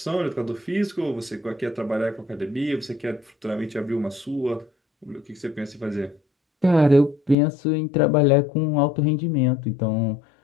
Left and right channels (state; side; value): drops out; right; at 7.4 s